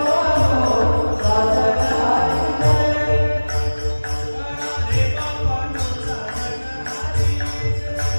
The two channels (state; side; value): inverted; both; correlation -1.00